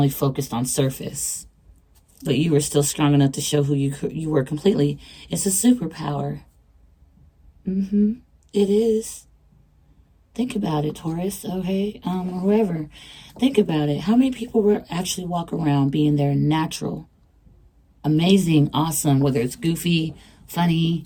focused on surface. But you were still strong enough to show who you were completely. It's a superpower. It is. Think about it, Taurus, okay? Or whoever. Think about it. How many people will actually walk around being their natural, amazing, awesome, whether it's goofy, funny,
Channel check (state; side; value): identical; both; correlation 1.00